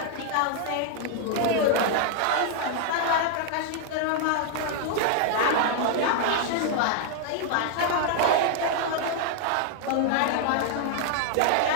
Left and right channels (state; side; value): different; both; correlation 0.00